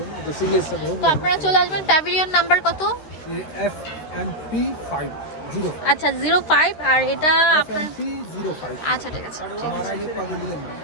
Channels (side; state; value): right; late; 13 ms